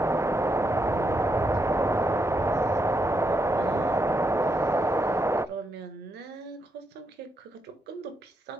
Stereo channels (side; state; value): both; normal; correlation 0.80